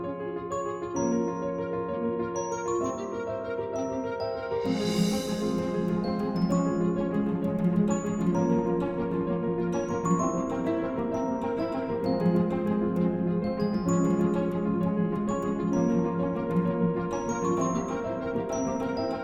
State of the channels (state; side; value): identical; both; correlation 1.00